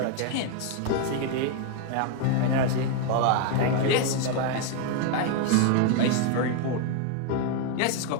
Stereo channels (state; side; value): different; both; correlation 0.00